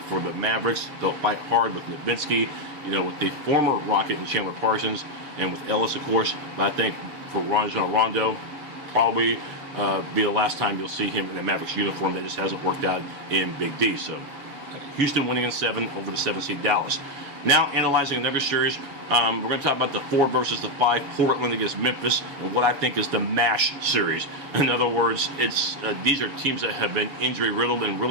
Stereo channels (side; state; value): left; late; 7.1 ms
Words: the Mavericks, they'll fight hard with Nowitzki, you know, with the former Rocket and Chandler Parsons, and with Ellis, of course. But I think for Rajon Rondo, probably be the last time you'll see him in a Mavericks uniform. That just hasn't worked out in Big D. So Houston winning in 7 over the 7 seed Dallas. Now analyzing another series, we're going to talk about the 4 versus the 5, Portland against Memphis, and what I think is the MASH series. In other words, it's these are teams that have been injury riddled and